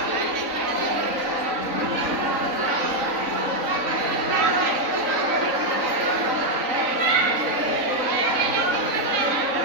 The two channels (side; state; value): left; late; 3.9 ms